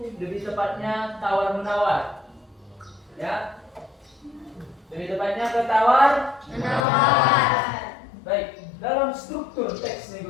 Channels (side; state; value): right; drops out; at 6.9 s